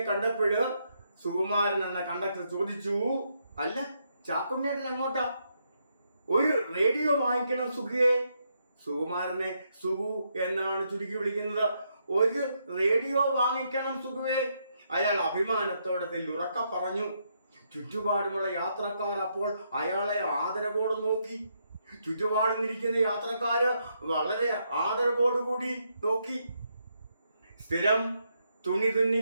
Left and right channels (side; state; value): both; inverted; correlation -0.77